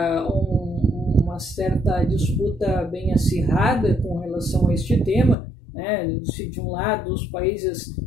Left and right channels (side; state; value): right; drops out; at 5.4 s